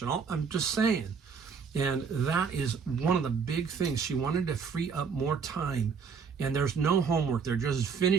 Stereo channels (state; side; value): quieter; left; 5.9 dB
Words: and all. I'm just saying. And that is one of the big things. She wanted to free up more time. And there's no homework. They're just